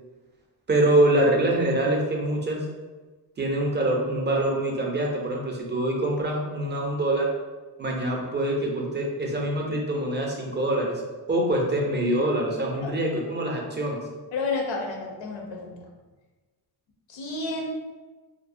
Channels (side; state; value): both; normal; correlation 0.21